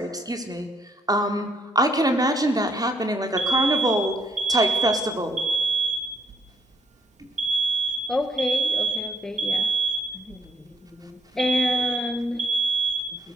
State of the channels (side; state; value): both; normal; correlation 0.71